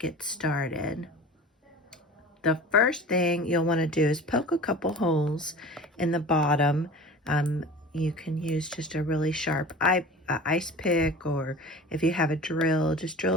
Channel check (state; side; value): normal; both; correlation 0.38